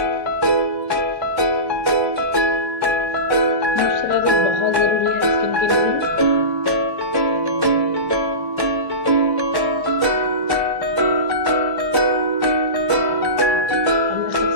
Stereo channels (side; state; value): left; late; 1.1 ms